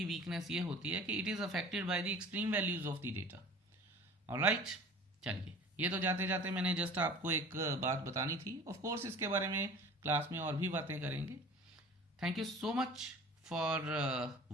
वीकनेस ये होती है कि it is affected by the extreme values of the data. Alright, चलिए, ये तो जाते जाते मैंने जस्ट आपको एक बात बतानी थी। ऑफ कोर्स इसके बारे में क्लास में और भी बातें करेंगे। Thank you so much for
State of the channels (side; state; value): both; normal; correlation 0.43